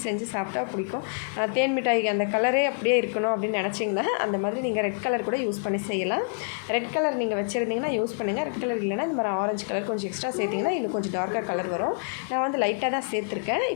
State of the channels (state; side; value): silent; right; 60 dB below the other